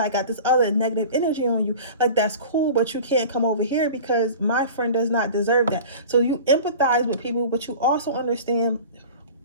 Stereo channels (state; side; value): inverted; both; correlation -0.38